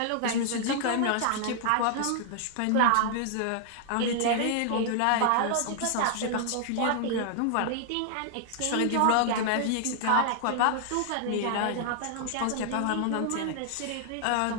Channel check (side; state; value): both; different; correlation 0.00